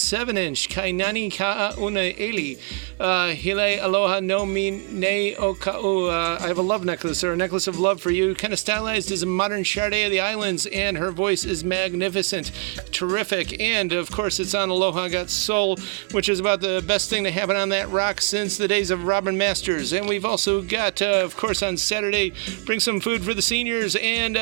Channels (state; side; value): quieter; left; 30.9 dB